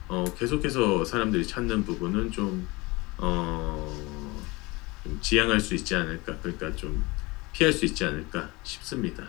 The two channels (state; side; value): quieter; right; 23.8 dB